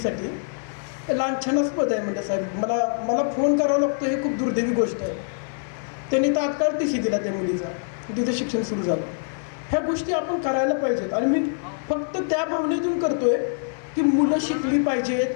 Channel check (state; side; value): silent; right; digital silence